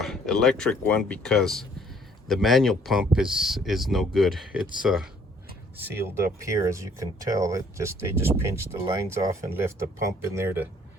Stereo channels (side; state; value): both; normal; correlation 0.61